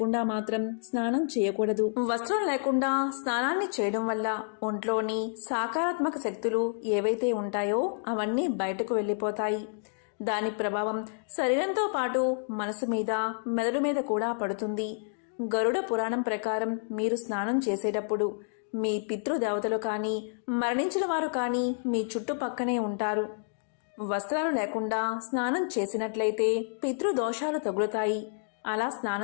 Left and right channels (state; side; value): silent; right; digital silence